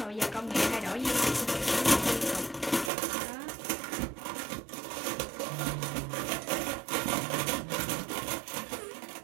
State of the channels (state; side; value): drops out; left; at 2.9 s